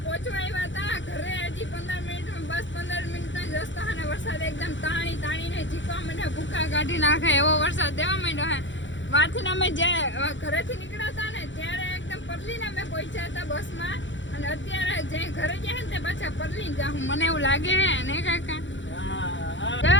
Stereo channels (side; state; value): right; late; 0.54 ms